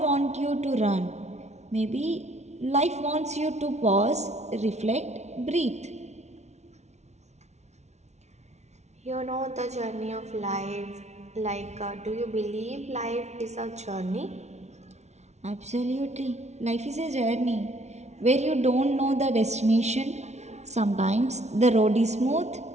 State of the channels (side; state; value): left; late; 0.32 ms